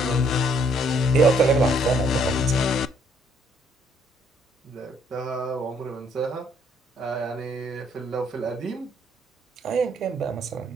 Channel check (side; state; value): both; normal; correlation 0.66